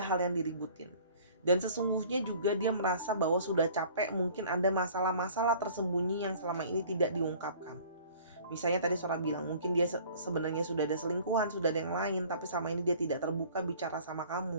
hal yang diributin. Dan sesungguhnya juga dia merasa bahwa sudah capek, mungkin ada masalah-masalah tersembunyi yang selama ini tidak diungkapkan. Misalnya tadi Sora bilang mungkin dia sebenarnya sudah ada selingkuhan, sudah ada yang lain, tapi sama ini dia tidak terbuka bicara sama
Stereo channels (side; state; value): both; inverted; correlation -0.50